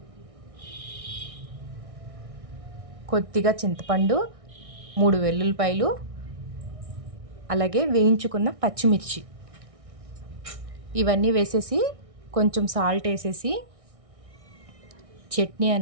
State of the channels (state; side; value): late; left; 1.6 ms